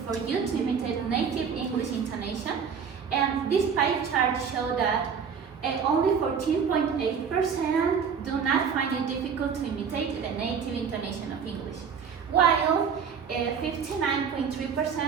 for you to imitate native English intonation? And this pie chart shows that only 14.8% do not find it difficult to imitate the native intonation of English, while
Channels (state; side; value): quieter; left; 6.6 dB